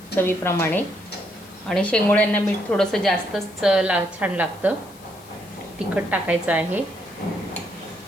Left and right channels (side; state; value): left; noise; hiss, 23 dB below the sound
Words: चवीप्रमाणे आणि शेंगोळ्यांना मीठ थोडंसं जास्तच छान लागतं। तिखट टाकायचं आहे,